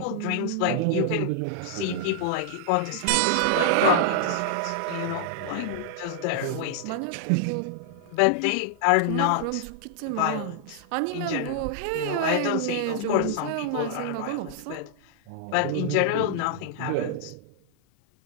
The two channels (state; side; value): different; both; correlation -0.01